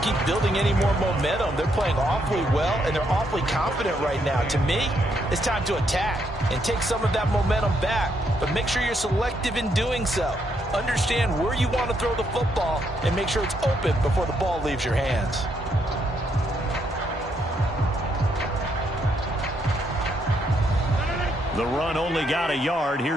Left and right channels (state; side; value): normal; both; correlation 0.75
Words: building any more momentum. They're playing awfully well, and they're awfully confident right now. To me, it's time to attack and take some of that momentum back, but make sure you're selective in doing so. Understand where you want to throw the football and make sure it's open before the ball leaves your hands. The run only got a yard.